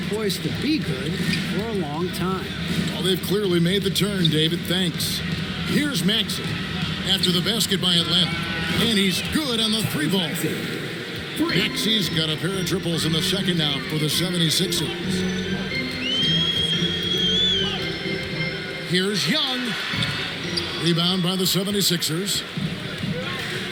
poised to be good for a long time. Well, they've clearly made the turn, David. Thanks. Here's Maxey after the basket by Atlanta. And he's good on the 3-ball. Maxey's got a pair of triples in the second now for the 76ers. Here's Young. Rebound by the 76ers.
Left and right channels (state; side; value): identical; both; correlation 1.00